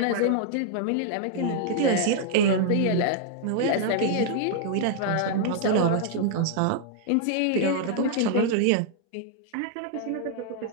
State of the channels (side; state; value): both; different; correlation -0.01